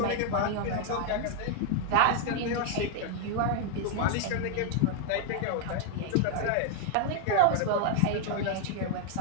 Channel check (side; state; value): both; different; correlation 0.00